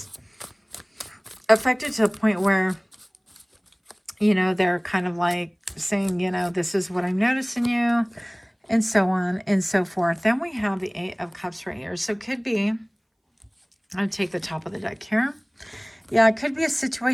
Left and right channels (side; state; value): both; identical; correlation 1.00